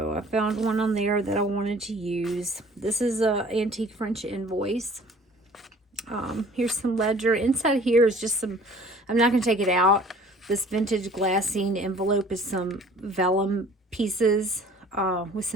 I found one on there that I wanted to use. This is a antique French invoice. Here's some ledger. Inside here is just some, I'm not going to take it out. This vintage glassine envelope is some vellum pieces with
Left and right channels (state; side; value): normal; both; correlation 0.51